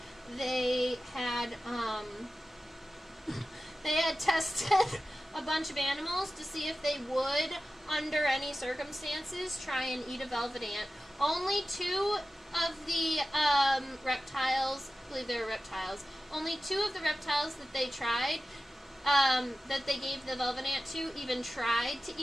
they had tested a bunch of animals to see if they would, under any circumstances, try and eat a velvet ant. Only two of the reptiles, I believe they were reptiles, only two of the reptiles that they tried, that they gave the velvet ant to, even tried to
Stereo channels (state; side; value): normal; both; correlation 0.95